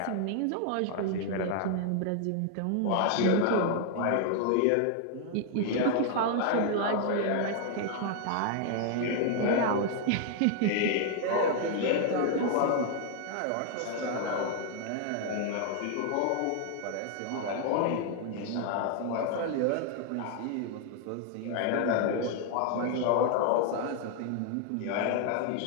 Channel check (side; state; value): both; different; correlation 0.00